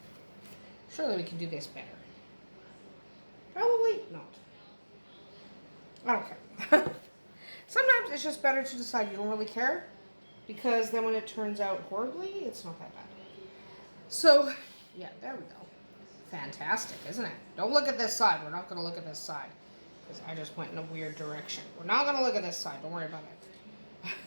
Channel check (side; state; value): both; inverted; correlation -1.00